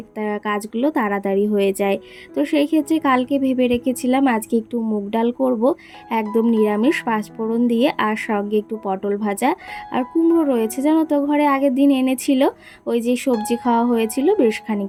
কাজগুলো তাড়াতাড়ি হয়ে যায়। তো সেই ক্ষেত্রে কালকে ভেবে রেখেছিলাম আজকে একটু মুগ ডাল করব, একদম নিরামিষ, পাঁচফোড়ন দিয়ে, আর সঙ্গে একটু পটল ভাজা আর কুমড়ো রয়েছে জানো তো, ঘরে আগের দিন এনেছিল, ওই যে সবজি খাওয়া হয়েছিল বেশ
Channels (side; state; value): both; identical; correlation 1.00